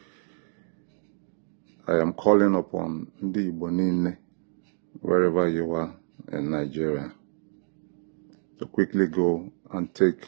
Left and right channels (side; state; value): left; silent; 59 dB below the other